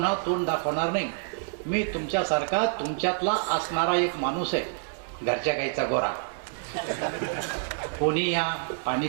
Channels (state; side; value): silent; left; digital silence